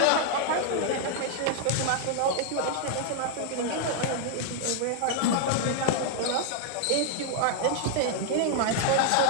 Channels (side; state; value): both; different; correlation 0.00